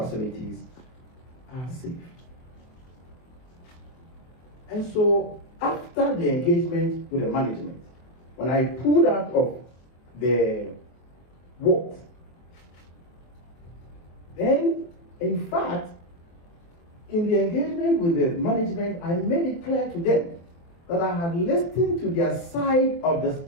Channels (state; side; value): late; right; 23 ms